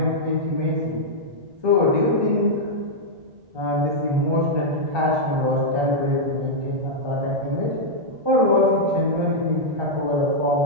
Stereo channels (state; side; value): late; left; 1.2 ms